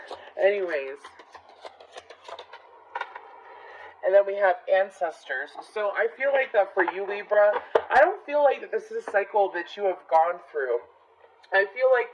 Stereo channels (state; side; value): identical; both; correlation 1.00